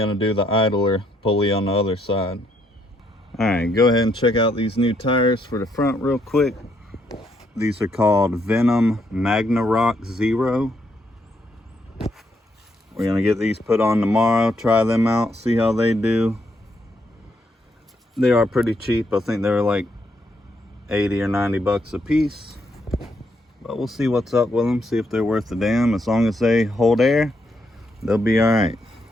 to do the idler pulley on the other side. Alright, go ahead and check out these new tires for the front real quick. These are called Venom Magna Rock Zero. We're going to get these put on tomorrow, try them out, see how they do. They are pretty cheap. I think they're like 80 or 90 bucks a piece. But we'll see what's up with them, see if they're worth a damn. As long as they hold air, they'll be alright.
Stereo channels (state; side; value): normal; both; correlation 0.75